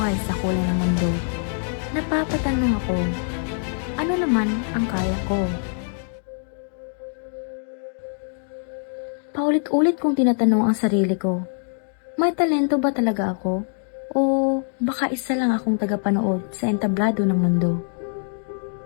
sa kulay ng mundo. Napapatanong ako, ano naman ang kaya ko? Paulit-ulit kong tinatanong ang sarili ko, may talento ba talaga ako? O baka isa lang akong tagapanood sa entablado ng mundo?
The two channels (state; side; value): silent; right; 63 dB below the other